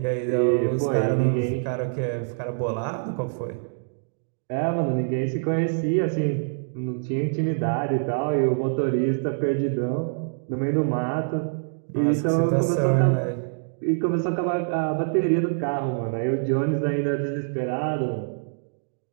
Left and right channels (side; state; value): left; silent; digital silence